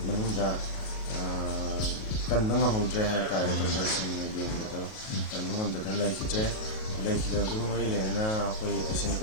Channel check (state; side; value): late; right; 37 ms